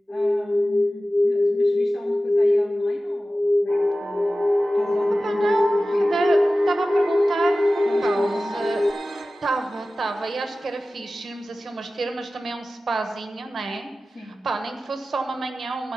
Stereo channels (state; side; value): normal; both; correlation 0.96